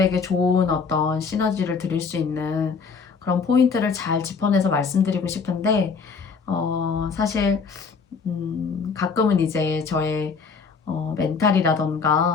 좋은 어떤 시너지를 드릴 수 있는 그런 포인트를 잘 짚어내서 말씀드리고 싶은데, 사실 가끔은 이제 저의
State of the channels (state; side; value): quieter; right; 5.4 dB